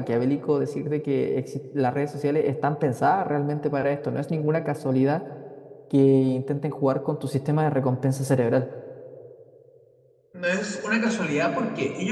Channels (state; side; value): identical; both; correlation 1.00